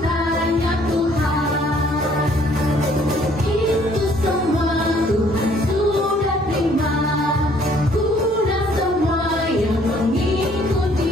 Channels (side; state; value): both; normal; correlation 0.61